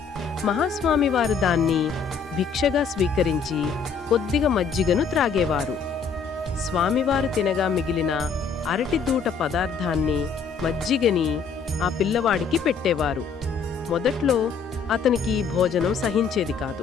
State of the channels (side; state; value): right; quieter; 5.7 dB